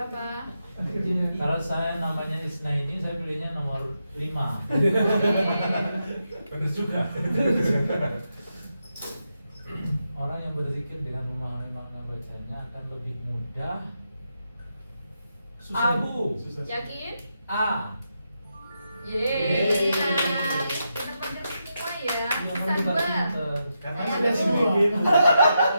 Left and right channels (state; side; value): inverted; both; correlation -0.84